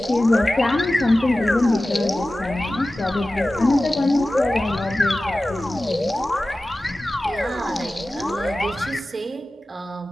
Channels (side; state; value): both; normal; correlation 0.96